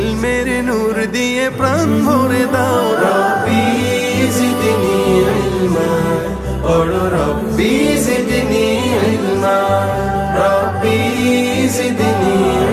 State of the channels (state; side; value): identical; both; correlation 1.00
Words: নূর দিয়ে প্রাণ ভরে দাও। রব্বি জিদনি ইলমা, পড়ো রব্বি জিদনি ইলমা। রব্বি জিদনি